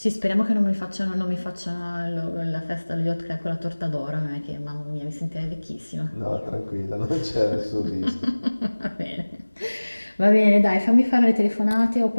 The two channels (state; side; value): inverted; both; correlation -1.00